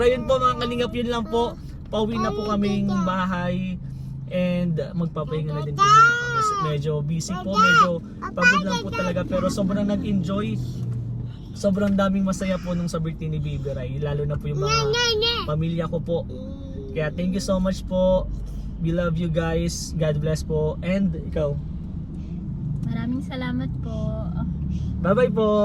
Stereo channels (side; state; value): both; identical; correlation 1.00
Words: yun po mga kalingap, yun lang po. Pauwi na po kaming bahay and magpapahinga na din po muna kami. Medyo busy po, medyo pagod lang po talaga, pero sobrang nag-enjoy. Sobrang daming masaya po nung sa birthday ni Baby Rai, lalo na po yung mga pamilya ko po. Kaya thank you so much po. We love you guys. God bless po. And ikaw? Maraming salamat po. Bye-bye po.